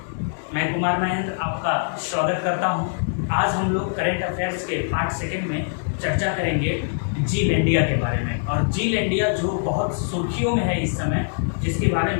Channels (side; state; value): right; silent; digital silence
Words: मैं कुमार महेंद्र आपका स्वागत करता हूं। आज हम लोग करंट अफेयर्स के पार्ट सेकंड में चर्चा करेंगे जील इंडिया के बारे में। और जील इंडिया जो बहुत सुर्खियों में है इस समय, जिसके बारे